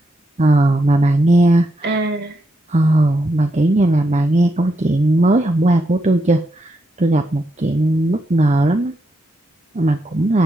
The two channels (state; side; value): normal; both; correlation 0.82